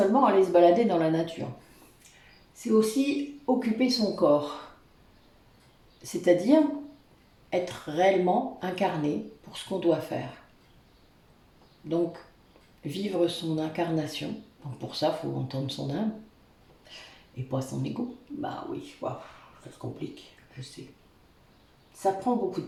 aller se balader dans la nature. C'est aussi occuper son corps. C'est-à-dire être réellement incarné pour ce qu'on doit faire. Donc, vivre son incarnation. Donc pour ça, il faut entendre son âme et pas son ego. Bah oui, wow, ça se complique, je sais. Ça prend beaucoup de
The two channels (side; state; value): both; identical; correlation 1.00